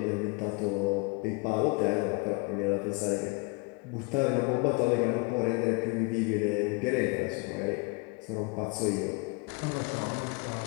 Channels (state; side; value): quieter; right; 29.5 dB